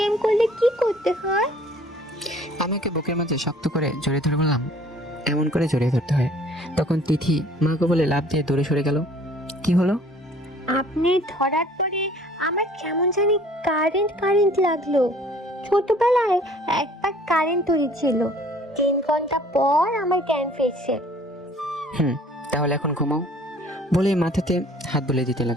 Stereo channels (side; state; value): both; normal; correlation 0.54